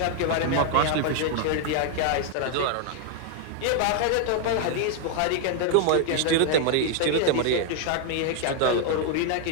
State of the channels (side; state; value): both; different; correlation 0.00